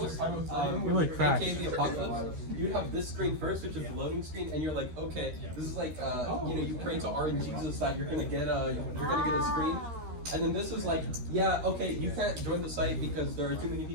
Really cracked. aka the apocalypse, you'd have this screen first, which is the loading screen, and you're like, okay, this is like, you pray to RNGesus that you're gonna get a screen. And then this is like, yeah, okay, you can't join the site because there are too many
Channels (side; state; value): left; late; 13 ms